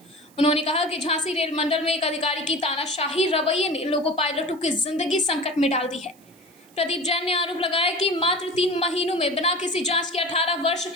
उन्होंने कहा कि झांसी रेल मंडल में एक अधिकारी की तानाशाही रवैये ने लोको पायलटों की जिंदगी संकट में डाल दी है। प्रदीप जैन ने आरोप लगाया कि मात्र 3 महीनों में बिना किसी जांच के 18 वर्ष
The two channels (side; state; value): right; noise; hiss, 28 dB below the sound